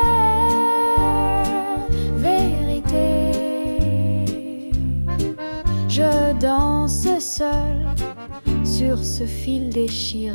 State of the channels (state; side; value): inverted; both; correlation -1.00